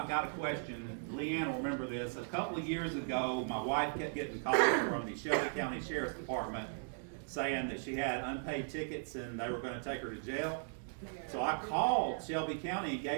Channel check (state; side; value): silent; left; digital silence